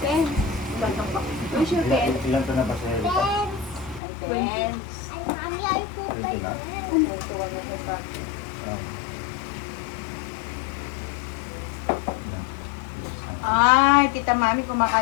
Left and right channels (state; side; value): drops out; right; at 4.0 s